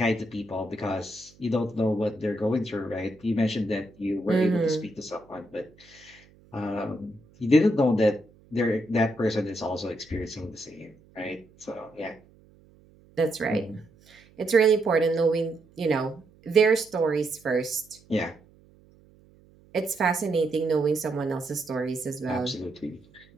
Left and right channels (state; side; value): noise; right; hum, 28 dB below the sound